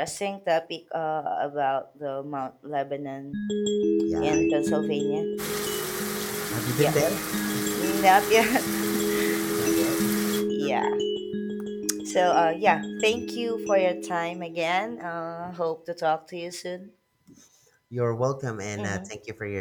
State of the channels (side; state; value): both; identical; correlation 1.00